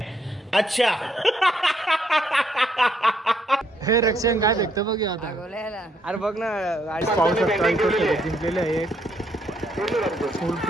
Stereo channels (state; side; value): normal; both; correlation 0.72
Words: अच्छा. हे रक्षण काय भेटतं बघ आता. अरे बघ ना गाडी पाहू शकता इथं शर्यत जिंकलेले आहे.